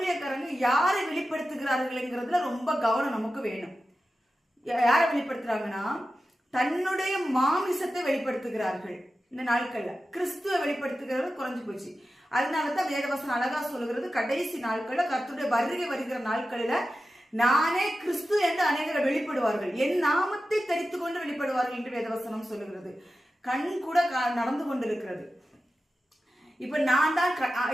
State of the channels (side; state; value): both; normal; correlation 0.93